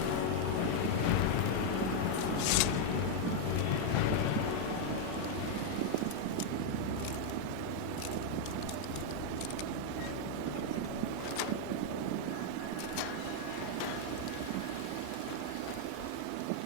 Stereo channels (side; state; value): both; different; correlation 0.00